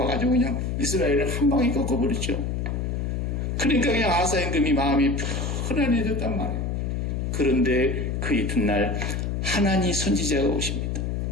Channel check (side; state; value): left; noise; hum, 1 dB below the sound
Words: 와가지고 그냥 이스라엘을 한 방에 꺾어버렸죠. 그러니까 그냥 아사 임금이 마음이 편안해졌단 말이에요. 그런데 그 이튿날 하나니 선지자가 오십니다.